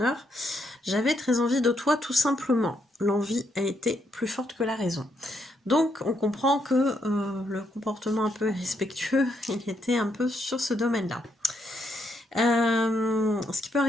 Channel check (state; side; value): normal; both; correlation 0.77